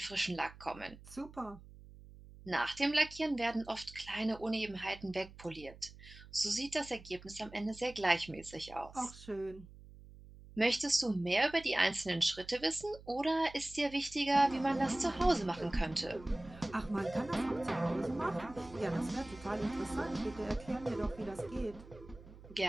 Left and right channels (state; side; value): noise; right; hum, 19 dB below the sound